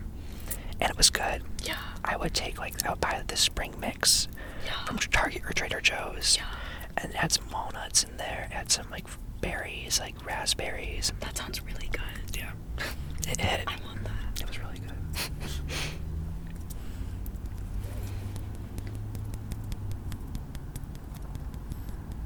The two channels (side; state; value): both; identical; correlation 1.00